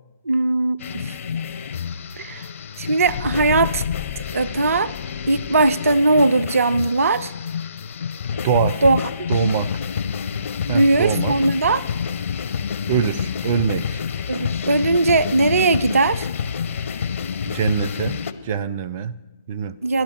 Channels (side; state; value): both; inverted; correlation -0.69